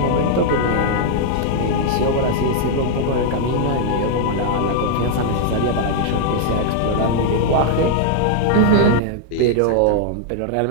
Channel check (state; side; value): different; both; correlation -0.01